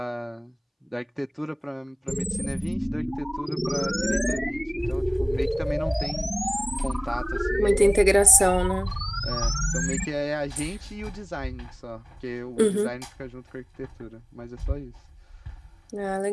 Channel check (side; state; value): both; identical; correlation 1.00